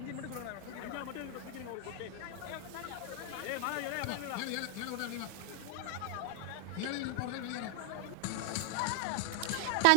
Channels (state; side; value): different; both; correlation 0.00